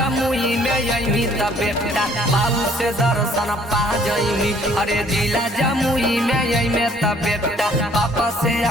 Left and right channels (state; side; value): normal; both; correlation 0.60